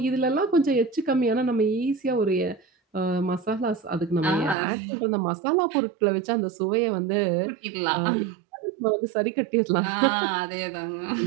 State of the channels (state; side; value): drops out; left; at 4.5 s